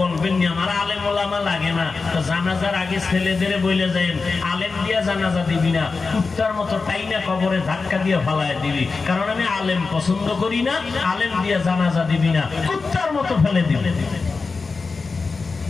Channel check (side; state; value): right; quieter; 4.3 dB